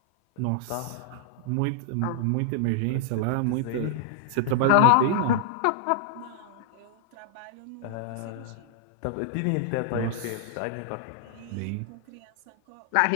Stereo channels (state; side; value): different; both; correlation -0.01